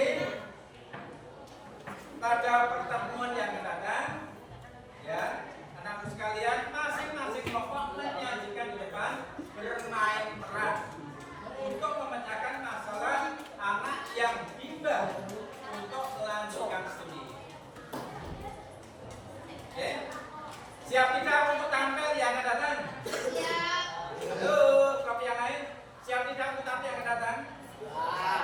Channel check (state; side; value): identical; both; correlation 1.00